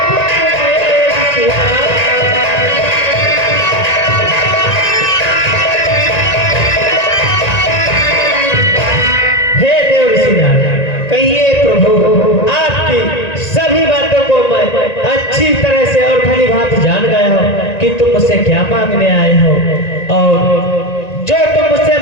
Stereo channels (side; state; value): right; late; 1.9 ms